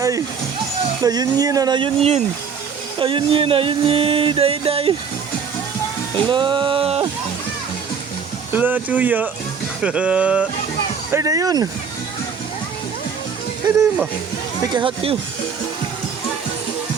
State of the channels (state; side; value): quieter; left; 6.3 dB